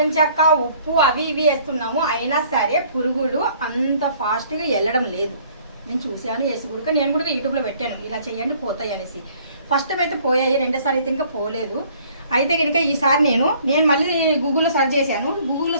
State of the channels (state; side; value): inverted; both; correlation -0.58